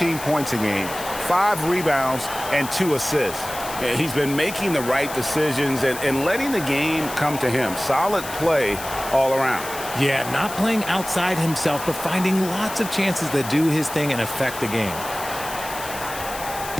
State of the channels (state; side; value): noise; left; hiss, 11 dB below the sound